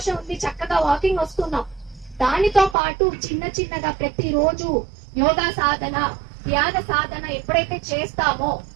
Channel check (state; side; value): drops out; left; at 2.8 s